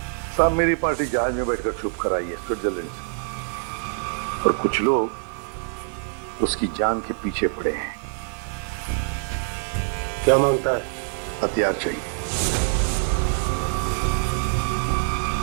साहब मेरी पार्टी जहाज में बैठकर छुप कर आई है स्विट्जरलैंड से, और कुछ लोग उसकी जान के पीछे पड़े हैं। क्या मांगता है? हथियार चाहिए।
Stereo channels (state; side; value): silent; left; digital silence